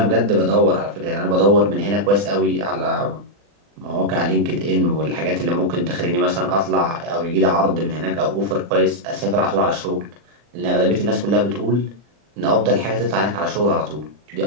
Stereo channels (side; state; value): left; late; 40 ms